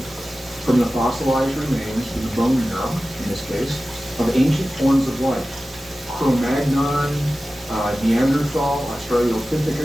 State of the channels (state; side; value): normal; both; correlation 0.95